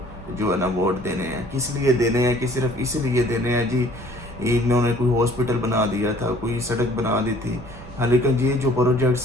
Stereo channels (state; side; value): noise; right; rumble, 16 dB below the sound